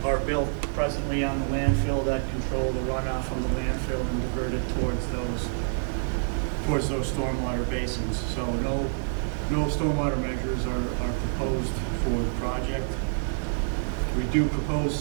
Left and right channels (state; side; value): silent; left; digital silence